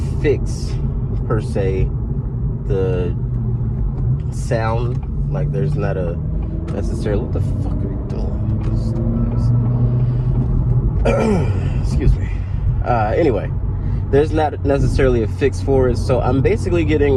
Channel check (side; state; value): both; identical; correlation 1.00